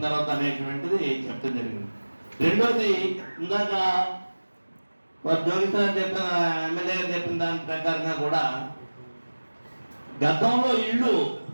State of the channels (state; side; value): inverted; both; correlation -1.00